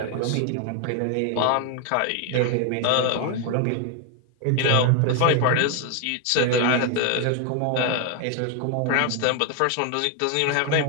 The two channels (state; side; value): different; both; correlation 0.01